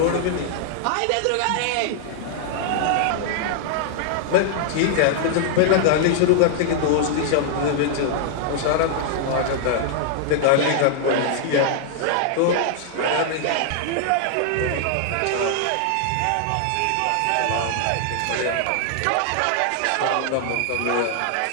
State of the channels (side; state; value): both; different; correlation 0.00